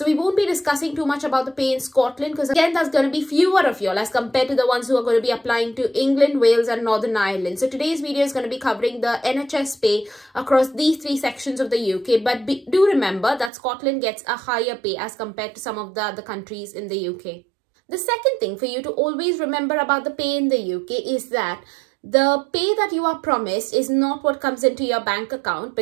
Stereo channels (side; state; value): left; drops out; at 13.5 s